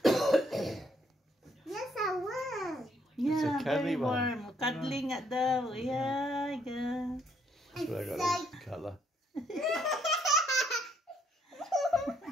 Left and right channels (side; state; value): both; normal; correlation 0.70